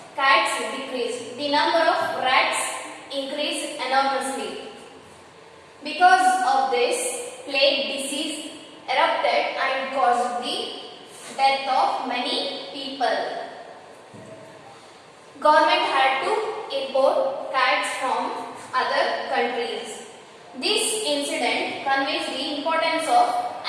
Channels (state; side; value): identical; both; correlation 1.00